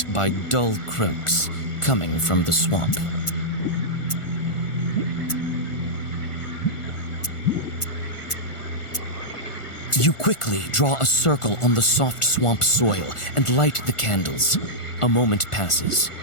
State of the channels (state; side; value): late; right; 1.4 ms